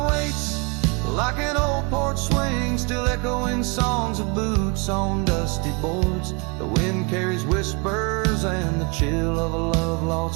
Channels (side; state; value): left; quieter; 31.0 dB